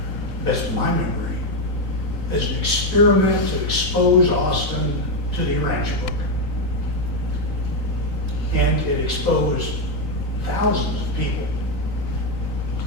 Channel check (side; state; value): left; late; 3.9 ms